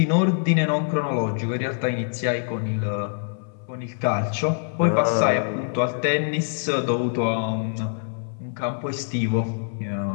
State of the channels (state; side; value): silent; right; 62 dB below the other